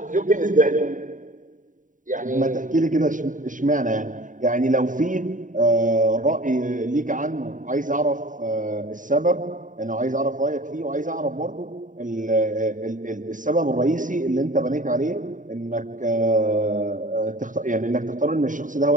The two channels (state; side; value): late; left; 0.38 ms